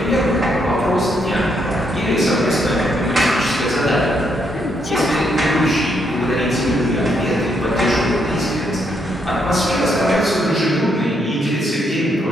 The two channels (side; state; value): both; normal; correlation 0.76